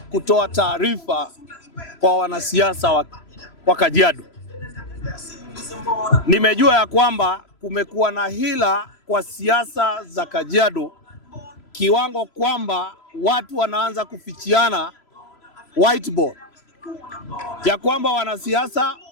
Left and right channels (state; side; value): late; right; 3.0 ms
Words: kutoa taarifa kwa wanasiasa wa Kajiado. Nimejua ya kwamba kumekuwa na hila kwa siasa za Kajiado kiwango kwamba watu wanaanza kufichiana whiteboard, ya kwamba wanasiasa